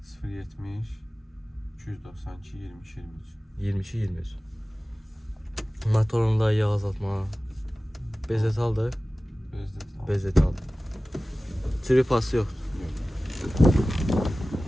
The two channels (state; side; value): normal; both; correlation 0.97